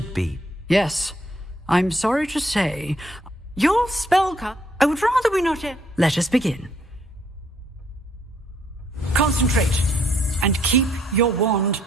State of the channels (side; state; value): both; normal; correlation 0.68